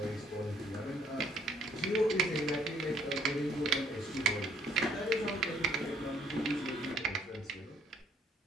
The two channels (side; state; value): both; normal; correlation 0.63